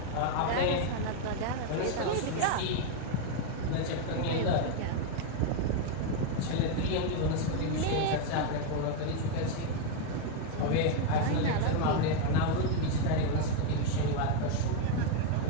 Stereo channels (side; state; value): both; different; correlation 0.01